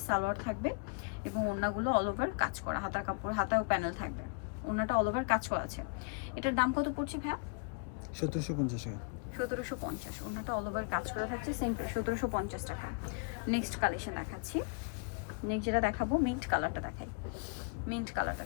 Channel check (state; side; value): quieter; right; 35.7 dB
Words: সালোয়ার থাকবে এবং ওড়নাগুলো অল ওভার কাজ করা, হাতার কাপড়, হাতায়ও প্যানেল থাকবে, ওড়নাটা অল ওভার কাজ করা আছে। এটার দাম কত পড়ছে ভাইয়া? 1750 টাকা। 1750। ওড়নাটা অল ওভার কাজ করা থাকছে, সেম প্রাইস 1750 টাকা। নেক্সট কালেকশন দেখাচ্ছি। নেক্সট যেটা দেখাবো, মিন্ট কালারটা দেখাই। মিন্ট কালারটা